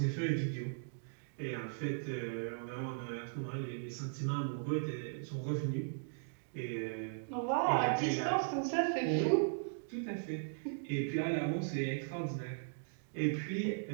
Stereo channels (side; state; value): left; silent; digital silence